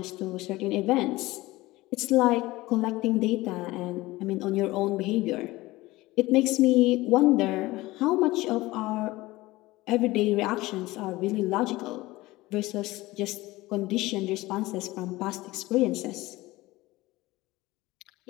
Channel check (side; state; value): right; quieter; 19.3 dB